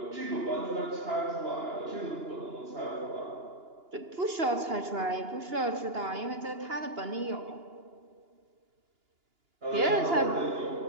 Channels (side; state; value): left; late; 2.9 ms